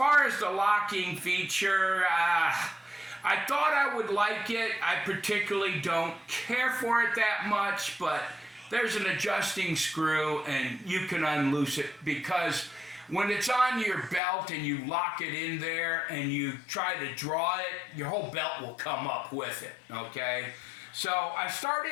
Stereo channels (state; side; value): drops out; right; at 14.2 s